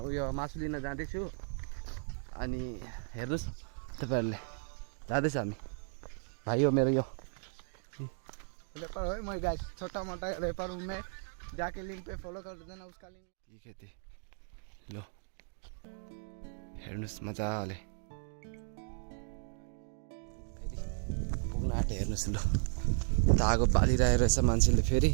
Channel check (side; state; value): left; silent; 54 dB below the other